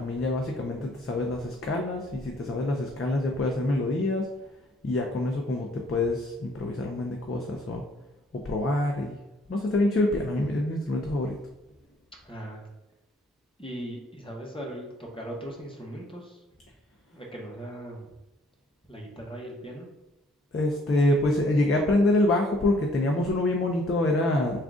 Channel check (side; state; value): both; normal; correlation 0.62